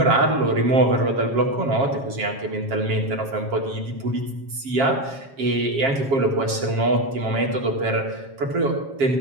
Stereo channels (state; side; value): late; left; 7.4 ms